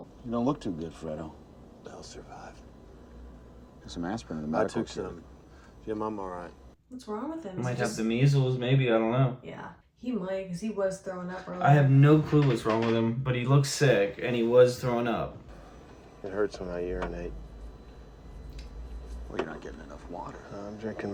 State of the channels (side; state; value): both; identical; correlation 1.00